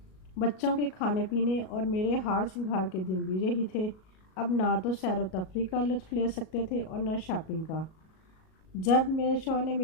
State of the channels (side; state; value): right; late; 37 ms